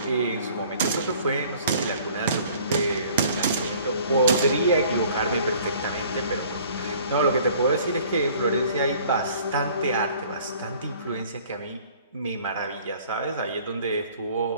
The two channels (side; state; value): both; inverted; correlation -0.53